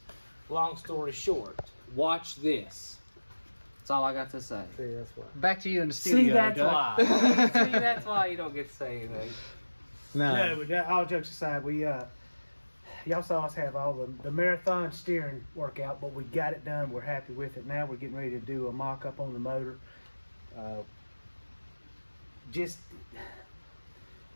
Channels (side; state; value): both; inverted; correlation -1.00